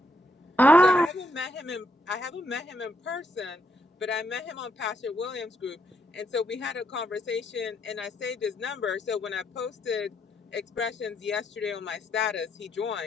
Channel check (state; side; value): normal; both; correlation 0.76